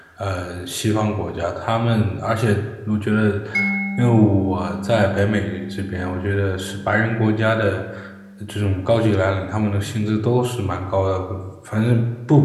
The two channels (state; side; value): identical; both; correlation 1.00